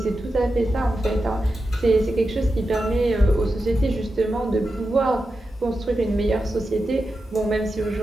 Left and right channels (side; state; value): both; normal; correlation 0.90